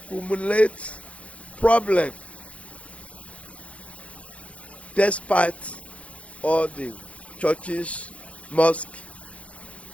problem despite all the churches, mosques,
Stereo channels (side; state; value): right; late; 0.063 ms